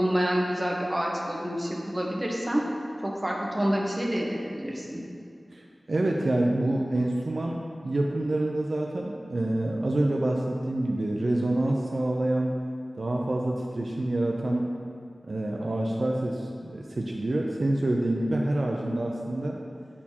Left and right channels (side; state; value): both; normal; correlation 0.98